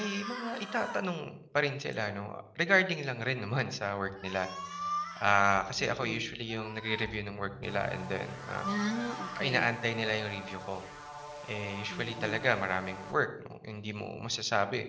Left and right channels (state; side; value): identical; both; correlation 1.00